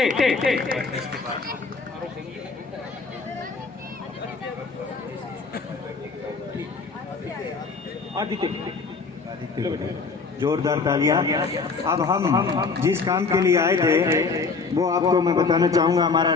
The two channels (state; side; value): quieter; right; 4.6 dB